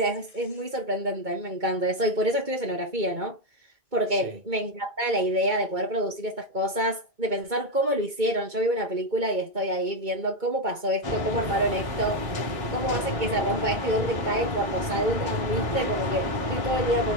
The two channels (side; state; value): left; late; 2.2 ms